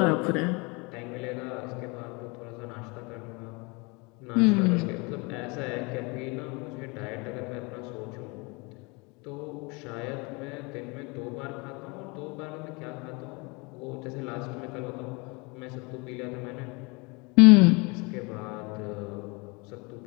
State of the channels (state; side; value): quieter; right; 28.2 dB